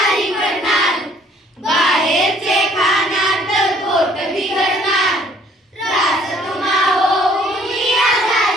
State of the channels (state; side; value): normal; both; correlation 0.59